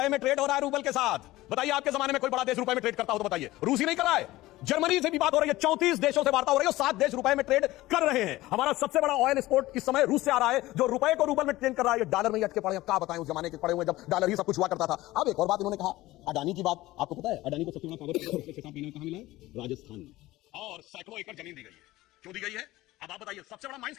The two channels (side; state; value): right; quieter; 17.7 dB